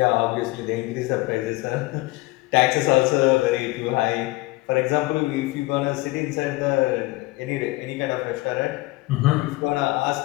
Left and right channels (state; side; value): quieter; right; 21.2 dB